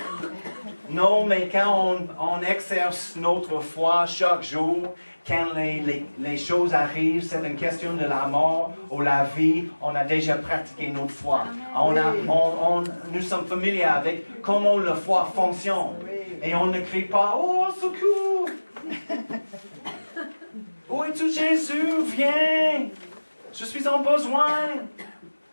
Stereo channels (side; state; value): both; inverted; correlation -1.00